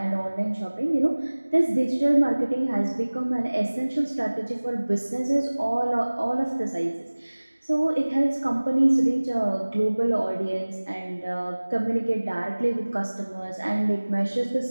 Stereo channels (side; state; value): both; inverted; correlation -1.00